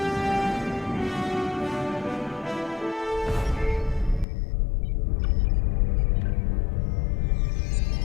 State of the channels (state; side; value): drops out; right; at 4.2 s